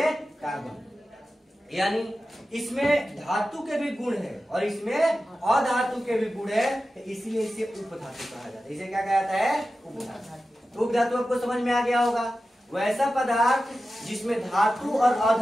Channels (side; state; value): both; normal; correlation 0.93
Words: कार्बन। यानी इसमें धातु के भी गुण है और इसमें अधातु के भी गुण है, इसलिए इसे उपधातु कहा जाता है। इसे क्या कहा जाता है? उपधातु। उपधातु आपको समझ में आ गया होगा। वैसा पदार्थ जिसमें धातु और